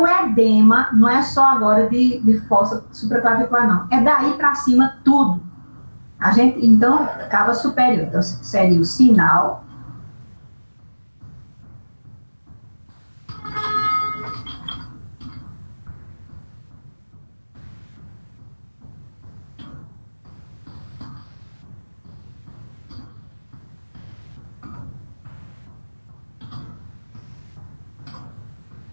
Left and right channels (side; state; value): both; inverted; correlation -1.00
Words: edema, não é só agora de fossa supraclavicular, não. É daí para cima tudo. Então, cava superior. Então, seria o sinal.